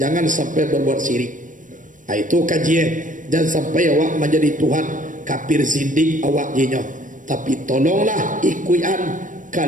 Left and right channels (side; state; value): left; late; 0.38 ms